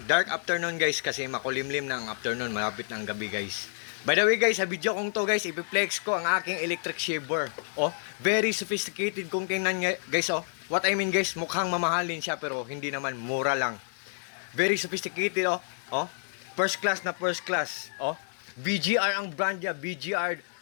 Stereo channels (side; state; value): right; silent; 59 dB below the other